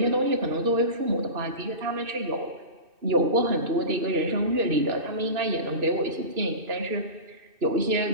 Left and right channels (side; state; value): left; late; 2.6 ms